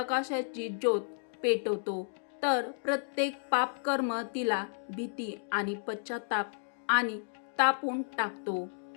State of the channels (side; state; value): right; silent; digital silence